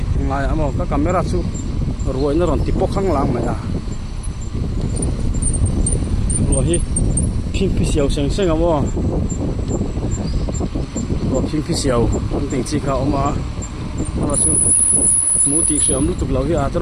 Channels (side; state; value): both; identical; correlation 1.00